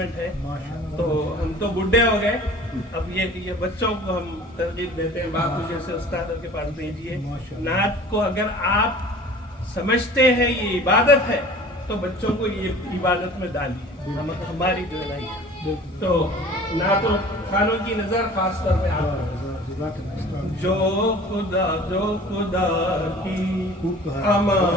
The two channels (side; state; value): both; normal; correlation 0.45